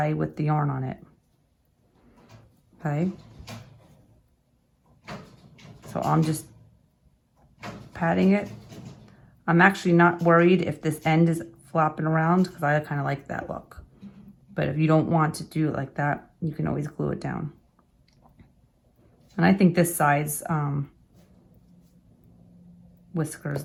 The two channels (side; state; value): both; identical; correlation 1.00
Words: with the yarn on it. Okay. So I'm just patting it. I'm actually not worried if this end is flopping around because I kind of like that look. But if you don't want to do it like that, you can always glue it down. And I think this size